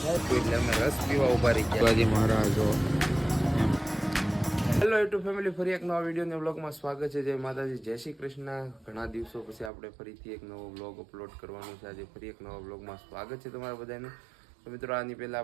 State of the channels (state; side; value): drops out; left; at 9.7 s